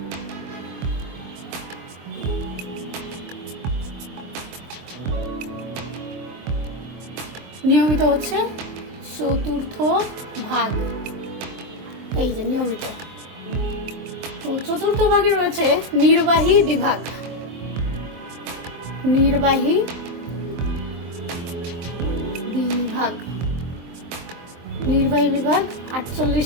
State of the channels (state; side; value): late; left; 24 ms